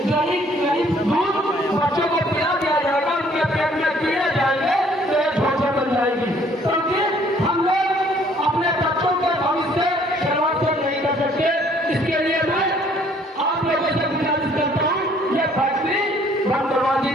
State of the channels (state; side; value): normal; both; correlation 0.60